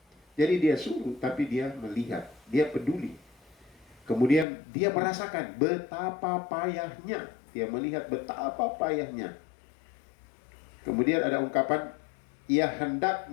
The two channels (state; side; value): drops out; right; at 4.5 s